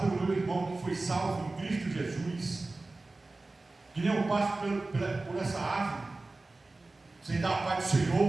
pelo meu irmão que foi salvo em Cristo Jesus, que nem eu passo por essa árvore, sem dar a paz do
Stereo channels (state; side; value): quieter; left; 3.2 dB